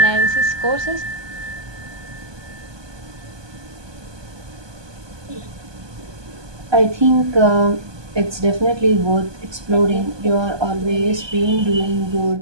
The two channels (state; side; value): late; left; 1.2 ms